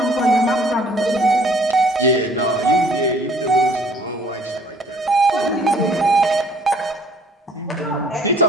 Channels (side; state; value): both; normal; correlation 0.57